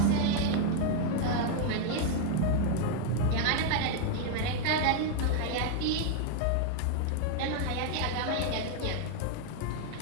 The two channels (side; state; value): both; different; correlation 0.00